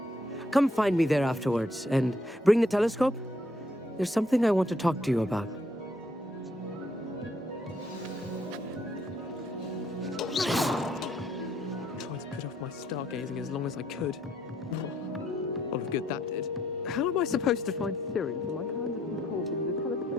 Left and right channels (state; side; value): normal; both; correlation 0.69